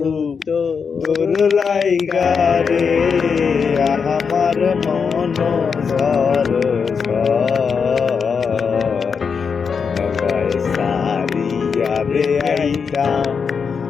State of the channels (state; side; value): quieter; right; 5.9 dB